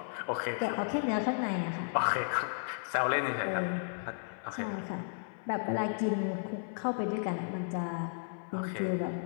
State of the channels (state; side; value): silent; right; 55 dB below the other